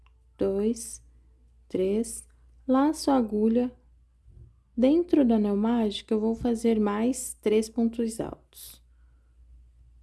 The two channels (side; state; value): both; identical; correlation 1.00